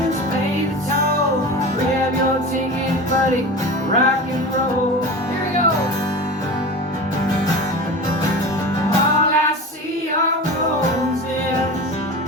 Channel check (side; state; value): both; normal; correlation 0.31